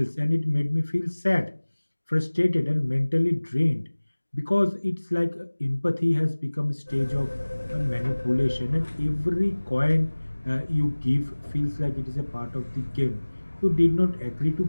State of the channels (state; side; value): inverted; both; correlation -1.00